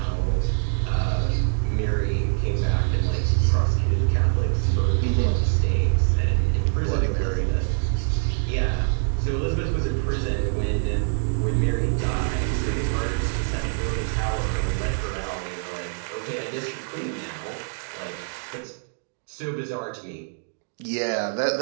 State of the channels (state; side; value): silent; left; digital silence